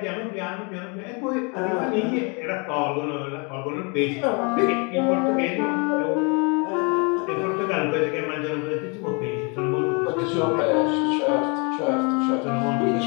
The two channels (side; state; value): right; quieter; 32.8 dB